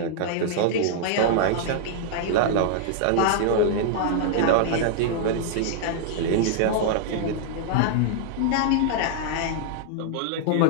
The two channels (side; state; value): both; different; correlation -0.01